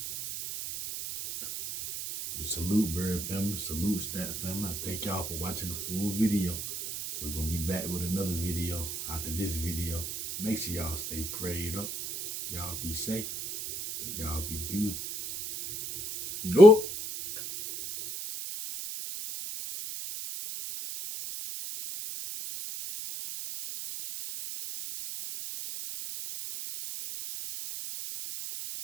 We salute Bird family, salute Stat family. I thank y'all for watching the full video. We're gonna be back with another video after this video. Make sure y'all stay prayed up. Y'all be safe. Y'all be good. You know?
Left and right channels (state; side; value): noise; right; hiss, 6 dB below the sound